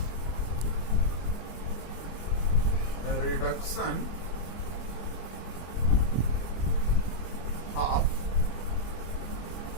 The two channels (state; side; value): late; right; 25 ms